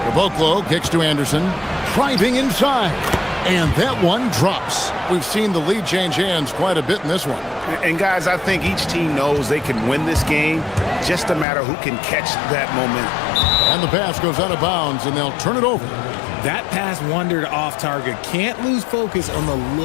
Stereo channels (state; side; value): drops out; right; at 11.5 s